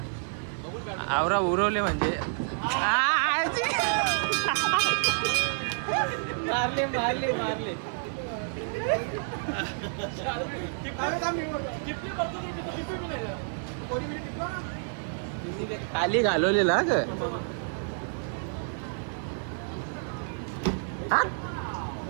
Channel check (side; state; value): left; silent; 59 dB below the other